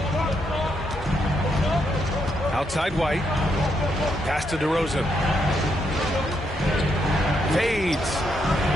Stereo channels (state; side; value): normal; both; correlation 0.78